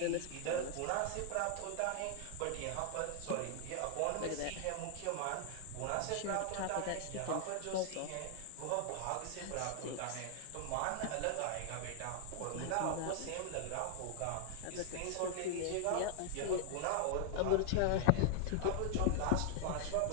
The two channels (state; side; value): different; both; correlation 0.00